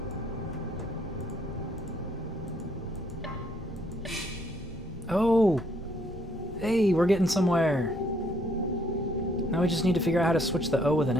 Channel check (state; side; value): normal; both; correlation 0.68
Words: Oh! Hey, we're getting somewhere. Now we just need to figure out how to switch the O with an